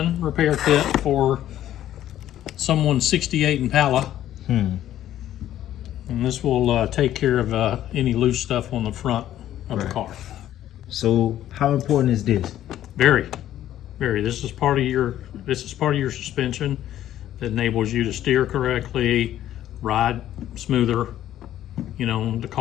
repair kit for someone's 68 Impala. And this will take care of any loose stuff on the front of the Right. car. So how important is this? Very, very. This is part of your suspension that enables you to steer correctly, ride smoother, the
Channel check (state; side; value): quieter; right; 12.3 dB